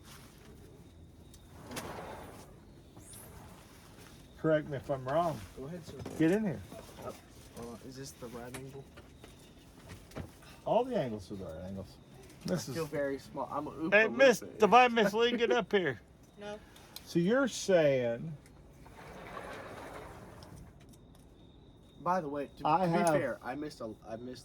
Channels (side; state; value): both; identical; correlation 1.00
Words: Correct me if I'm wrong. Go ahead, sir. Get in here. Is this the right angle? All the angles are the right angles. This I is. feel very small. I'm a Oompa Hey, Miss Loompa. Divine Miss Lee, get up here. No. So you're saying By the way, to I be have- fair, I missed